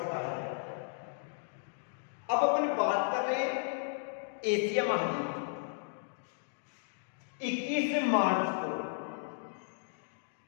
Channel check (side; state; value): right; silent; digital silence